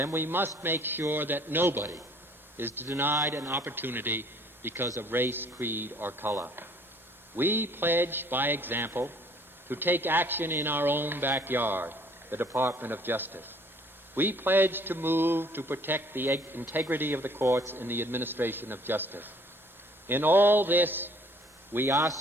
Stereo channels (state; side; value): normal; both; correlation 0.57